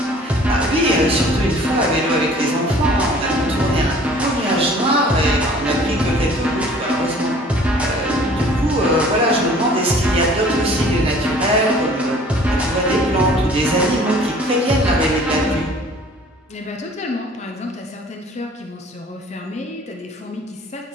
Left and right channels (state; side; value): normal; both; correlation 0.51